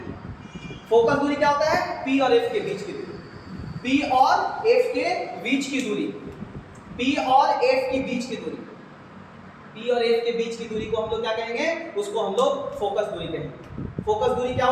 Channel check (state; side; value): identical; both; correlation 1.00